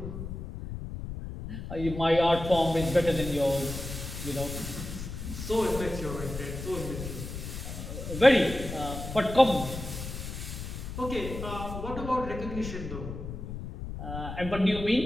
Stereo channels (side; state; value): left; noise; rumble, 8 dB below the sound